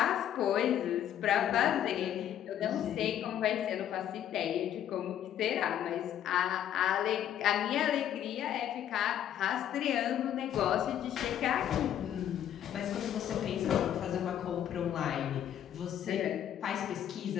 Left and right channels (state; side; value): quieter; right; 10.5 dB